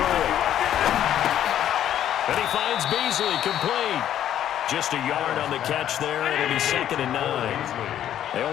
And he finds Beasley, complete. Just a yard on the catch there, and it'll be 2nd and 9. They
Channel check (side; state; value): right; quieter; 10.9 dB